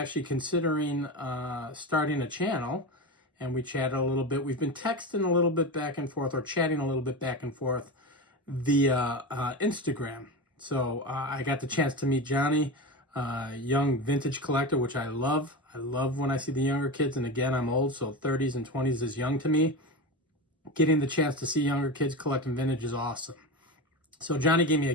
considering starting a channel, and we chatted a little bit. We've been texting a little bit back and forth, or chatting a little bit back and forth via Instagram. So I got the chance to meet Johnny, young vintage collector, which I love. I love when I see the younger kids, and again, I'm old, so 30s and 20s is young to me. Getting the chance to see younger kids collecting vintage is awesome. So Johnny gave me a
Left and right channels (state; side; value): normal; both; correlation 0.22